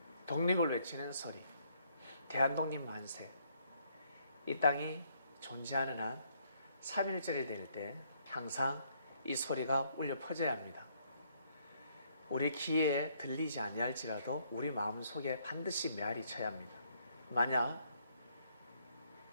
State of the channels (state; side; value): inverted; both; correlation -0.69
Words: 독립을 외치는 소리, 대한독립 만세. 이 땅이 존재하는 한 3.1절이 될 때 항상 이 소리가 울려 퍼져야 합니다. 우리 귀에 들리지 아니할지라도 우리 마음속에 반드시 메아리 쳐야 합니다. 만약